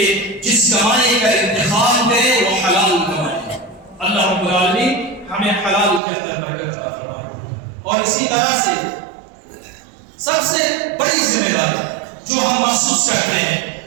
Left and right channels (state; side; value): drops out; left; at 6.0 s